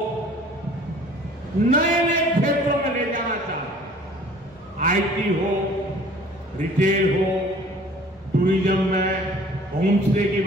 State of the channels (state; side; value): normal; both; correlation 0.51